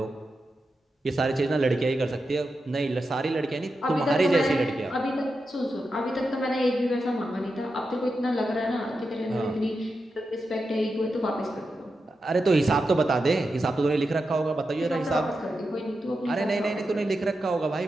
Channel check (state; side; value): normal; both; correlation 0.89